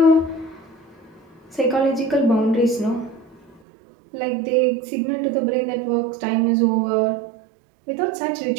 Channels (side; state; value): left; drops out; at 3.6 s